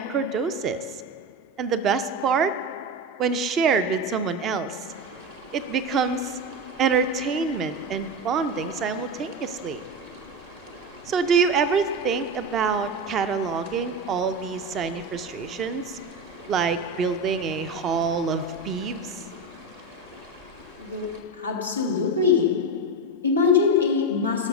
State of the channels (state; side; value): normal; both; correlation 0.18